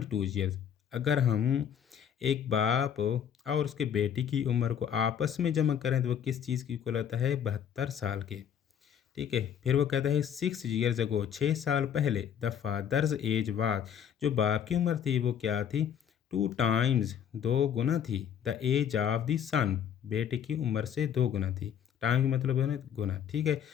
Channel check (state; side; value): quieter; right; 8.7 dB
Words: years. अगर हम एक बाप और उसके बेटी की उम्र को आपस में जमा करें तो वो किस चीज़ की इक्वल होता है, 72 साल के, ठीक है। फिर वो कहता है 6 ईयर्स अगो, 6 साल पहले, द फादर्स एज वाज, जो बाप की उम्र थी वो क्या थी, 2 टाइम्स, 2 गुना थी, द एज ऑफ द सन, बेटे की उम्र से 2 गुना थी। टाइम का मतलब है ना गुना, ठीक है।